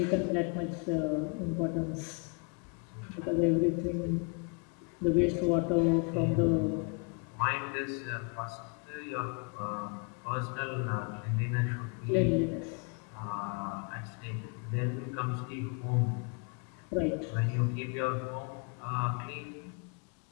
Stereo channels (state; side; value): quieter; right; 35.9 dB